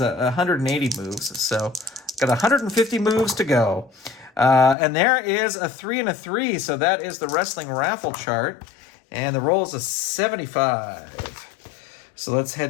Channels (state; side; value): drops out; right; at 4.8 s